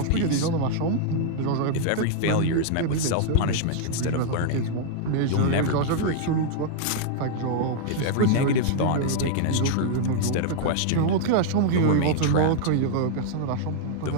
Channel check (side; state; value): both; different; correlation -0.01